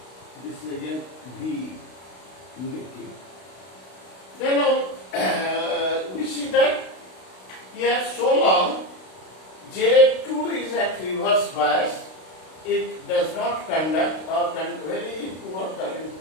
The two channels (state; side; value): late; right; 32 ms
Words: this is again V negative. Then we see that here so long J2 is at reverse bias, it does not conduct or very poor current